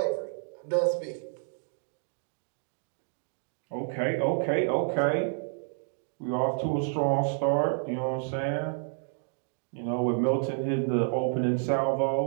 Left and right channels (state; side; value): silent; left; digital silence